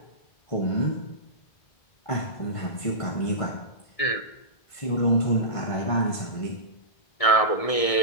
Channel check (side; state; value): right; late; 1.6 ms